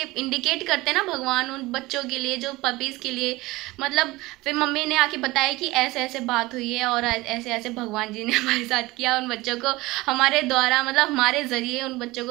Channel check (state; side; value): quieter; left; 20.5 dB